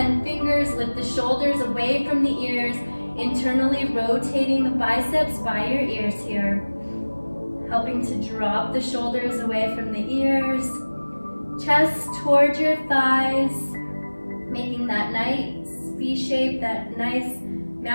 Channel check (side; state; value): both; inverted; correlation -1.00